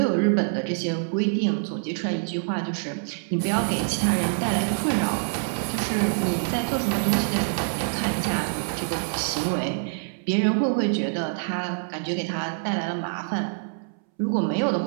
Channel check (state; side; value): silent; left; 61 dB below the other